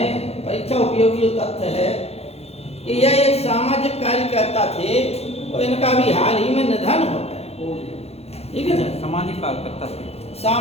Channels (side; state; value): right; late; 0.30 ms